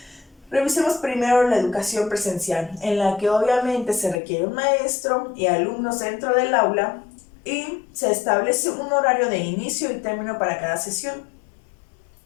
Revisemos primero la educación presencial, en la que obviamente se requiere un maestro y alumnos dentro del aula y se establece un horario de inicio y término para cada sesión.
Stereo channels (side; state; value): right; drops out; at 4.2 s